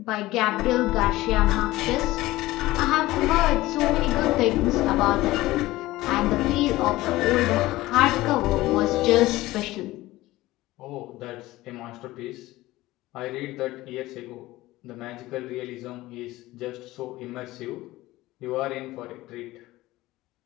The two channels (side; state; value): right; quieter; 17.9 dB